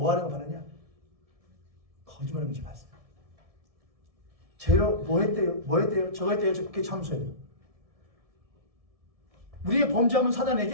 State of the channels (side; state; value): left; late; 1.7 ms